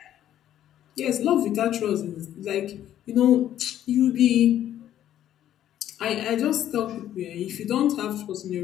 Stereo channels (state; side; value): quieter; right; 11.6 dB